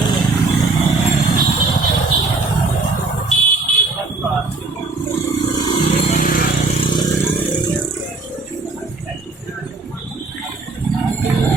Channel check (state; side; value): quieter; left; 3.7 dB